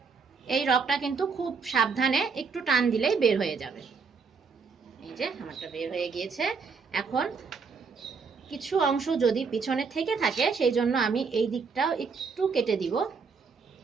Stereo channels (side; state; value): left; quieter; 5.2 dB